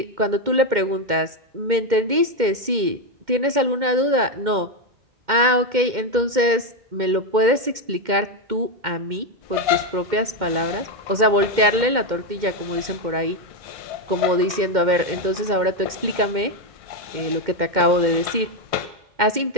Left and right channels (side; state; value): left; late; 2.1 ms